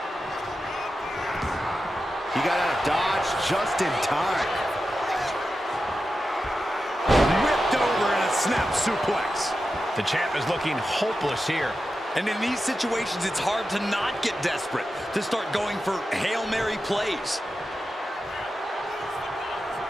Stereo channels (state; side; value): normal; both; correlation 0.91